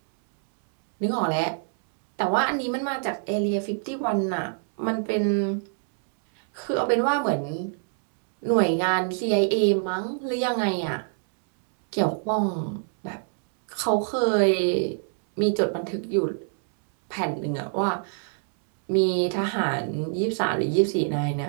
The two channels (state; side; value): silent; left; 62 dB below the other